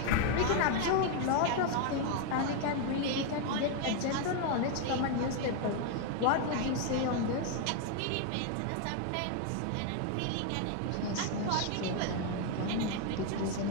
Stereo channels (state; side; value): different; both; correlation 0.01